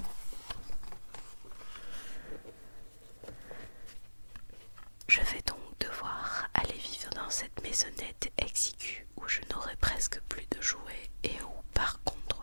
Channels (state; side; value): inverted; both; correlation -1.00